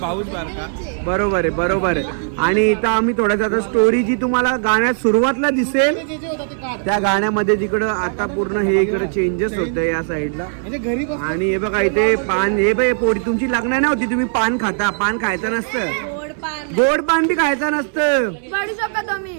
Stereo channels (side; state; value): left; silent; 63 dB below the other